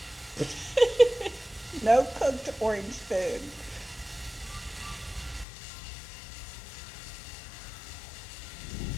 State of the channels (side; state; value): right; drops out; at 5.5 s